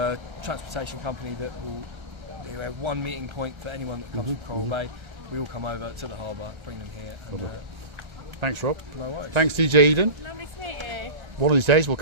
transportation company that will have one meeting point for anyone that comes from Coral Bay. We all come over to the harbour, bring them here, and Thanks, Rob. no worries. Thanks, DJ Eden. Lovely to meet you. One of these days we'll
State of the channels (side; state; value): left; late; 1.3 ms